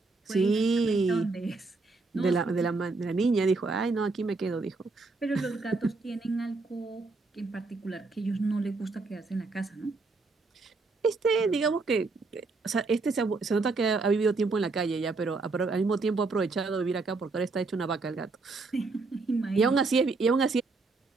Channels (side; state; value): left; quieter; 3.8 dB